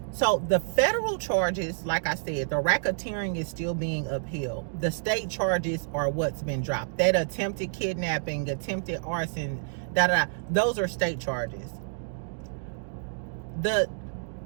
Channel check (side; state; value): left; silent; digital silence